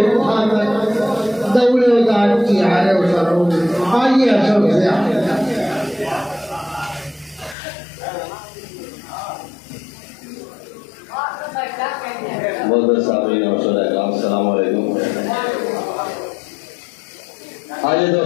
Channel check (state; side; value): drops out; right; at 7.6 s